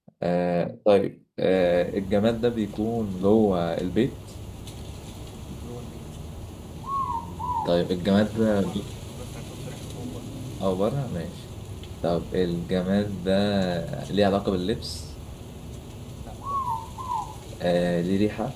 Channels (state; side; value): identical; both; correlation 1.00